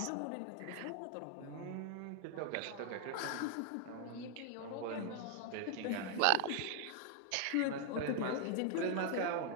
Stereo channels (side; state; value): both; different; correlation 0.00